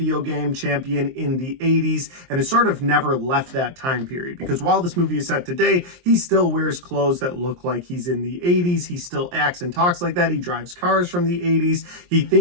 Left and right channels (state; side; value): late; left; 23 ms